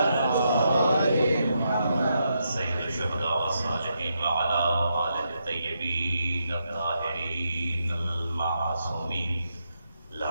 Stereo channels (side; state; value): both; inverted; correlation -0.81